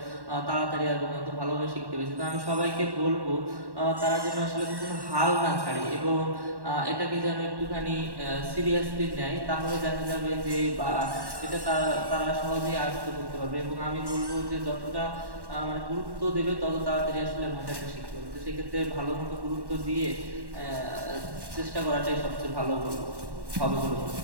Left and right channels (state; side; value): late; left; 1.1 ms